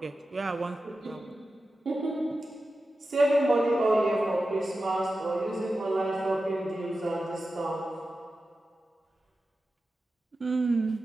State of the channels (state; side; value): normal; both; correlation 0.92